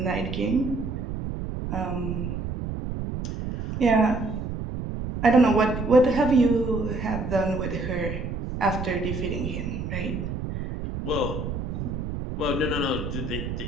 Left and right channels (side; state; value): right; noise; rumble, 5 dB below the sound